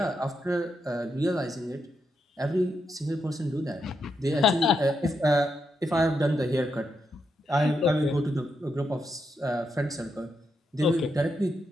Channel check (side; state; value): both; normal; correlation 0.82